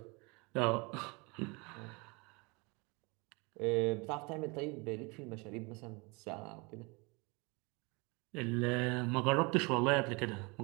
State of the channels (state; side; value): quieter; left; 28.2 dB